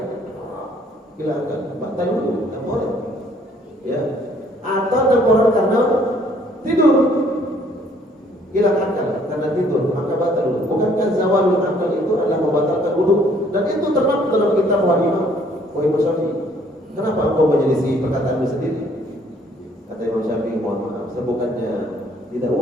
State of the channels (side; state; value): both; normal; correlation 0.62